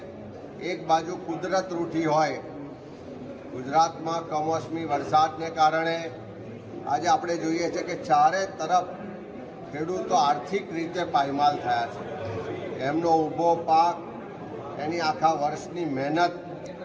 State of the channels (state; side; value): identical; both; correlation 1.00